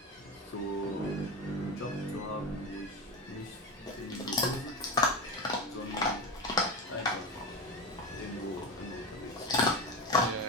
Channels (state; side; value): normal; both; correlation 0.22